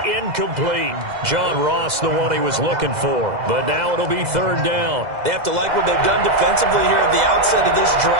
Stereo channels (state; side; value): late; left; 2.0 ms